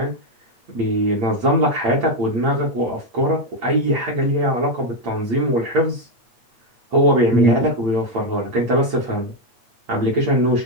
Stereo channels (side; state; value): left; late; 8.7 ms